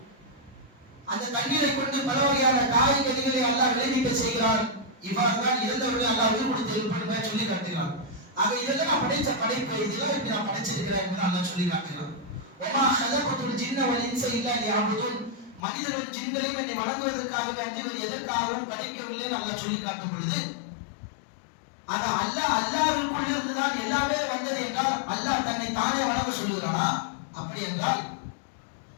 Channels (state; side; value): drops out; right; at 15.6 s